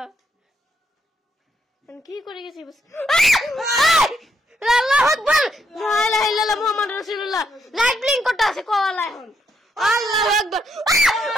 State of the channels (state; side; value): normal; both; correlation 0.76